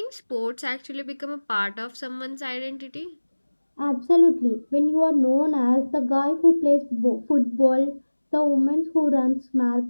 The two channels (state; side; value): inverted; both; correlation -1.00